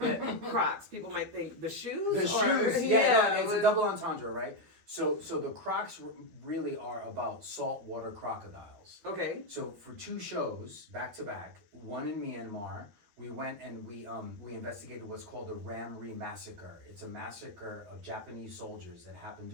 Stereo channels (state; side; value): late; left; 12 ms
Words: Crocs, people might think the shoes? The shoes, yeah. No, it's a double entendre, right? So the Crocs really are about saltwater crocodiles. Okay. So for 2 shows back to back, one in Myanmar, we went and we investigated what's called the Ram Re massacre. It's a massacre of Japanese soldiers that happened